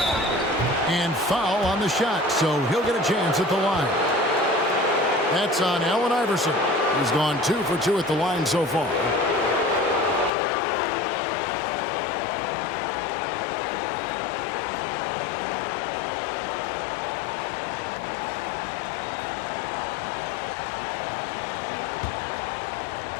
And foul on the shot, so he'll get a chance at the line. That's on Allen Iverson. He's gone 2 for 2 at the line so far.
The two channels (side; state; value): right; drops out; at 10.3 s